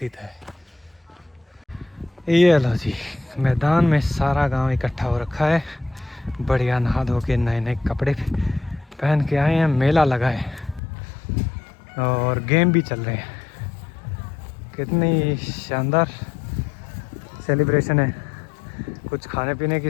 है। ये लो जी, मैदान में सारा गांव इकट्ठा हो रखा है, बढ़िया नहा धो के नए नए कपड़े पहन के आए हैं। मेला लगा है और गेम भी चल रहे हैं। कितनी शानदार सेलिब्रेशन है। कुछ खाने पीने की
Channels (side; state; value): right; drops out; at 10.8 s